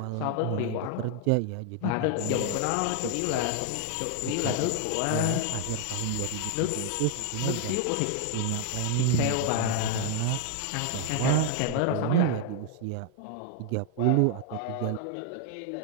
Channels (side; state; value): both; different; correlation 0.00